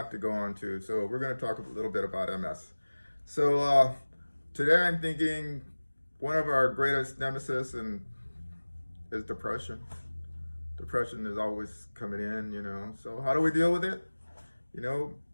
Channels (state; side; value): inverted; both; correlation -1.00